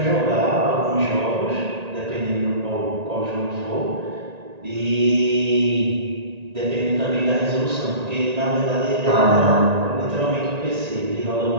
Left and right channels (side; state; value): left; late; 1.9 ms